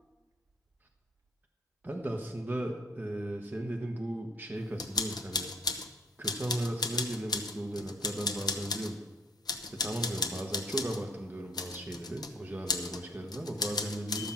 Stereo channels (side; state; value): both; normal; correlation 0.57